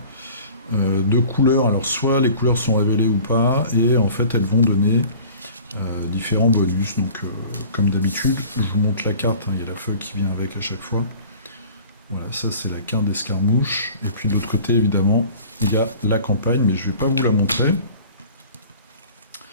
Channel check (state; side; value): inverted; both; correlation -0.44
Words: de couleurs. Alors soit les couleurs sont révélées ou pas, et en fait elles vont donner différents bonus. Donc comme d'habitude, je vous montre la carte, hein, il y a la feuille qui vient avec à chaque fois. Voilà, ça c'est la carte d'escarmouche. Et puis de l'autre côté, évidemment, il y a la campagne, mais je ne vais pas vous la montrer.